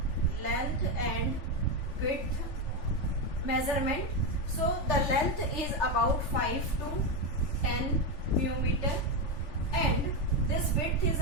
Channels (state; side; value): late; right; 3.4 ms